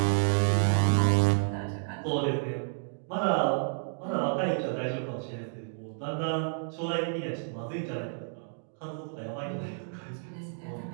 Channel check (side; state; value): left; silent; 58 dB below the other